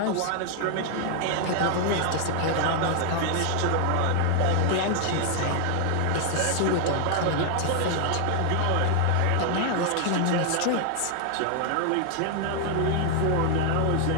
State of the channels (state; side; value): different; both; correlation 0.00